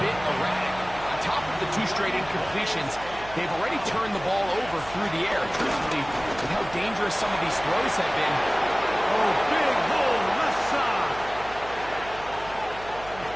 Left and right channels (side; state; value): right; noise; hum, 17 dB below the sound